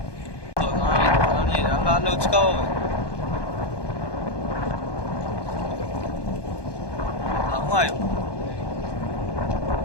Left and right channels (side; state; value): right; late; 1.2 ms